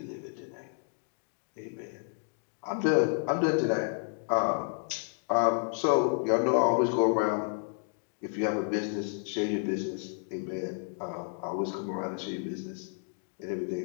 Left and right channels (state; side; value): silent; right; 57 dB below the other